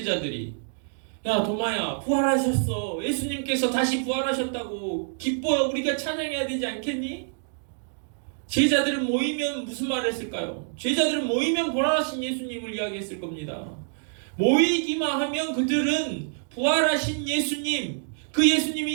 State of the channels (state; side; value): silent; left; digital silence